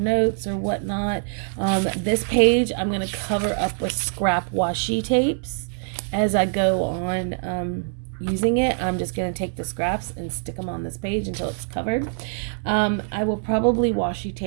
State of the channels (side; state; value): left; silent; digital silence